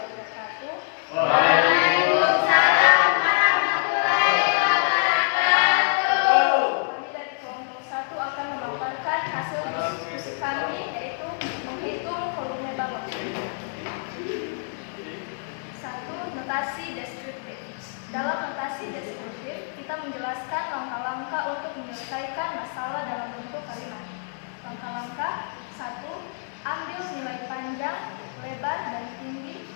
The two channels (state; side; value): silent; right; digital silence